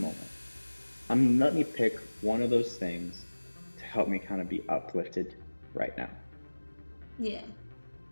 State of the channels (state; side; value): inverted; both; correlation -1.00